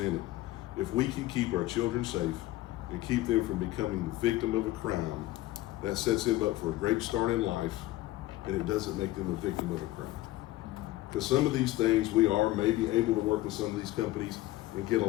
it. If we can keep our children safe and keep them from becoming the victim of a crime, that sets them up for a great start in life, and it doesn't make them a victim of a crime. Because some of these things, we are maybe able to work with some of these companies and get a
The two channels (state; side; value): quieter; right; 16.9 dB